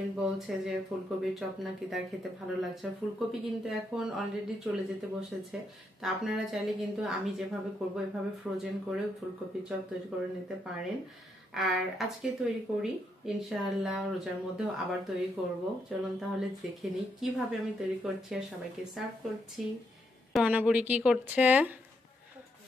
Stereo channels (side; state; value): both; normal; correlation 0.78